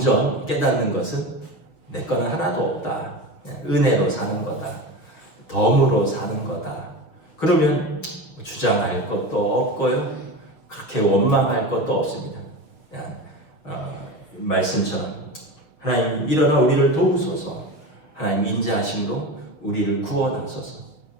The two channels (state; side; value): late; right; 6.4 ms